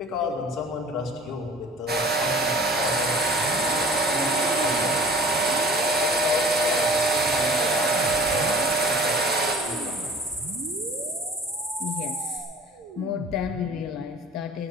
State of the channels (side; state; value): both; normal; correlation 0.46